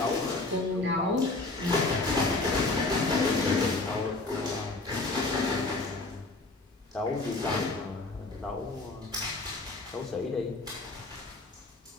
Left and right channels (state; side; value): quieter; right; 3.2 dB